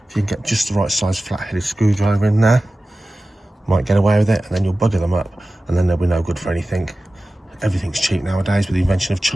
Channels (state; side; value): normal; both; correlation 0.96